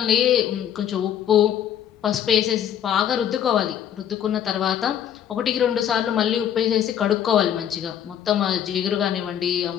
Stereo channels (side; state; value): right; quieter; 9.7 dB